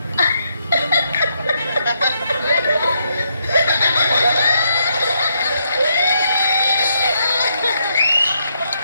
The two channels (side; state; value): both; inverted; correlation -0.77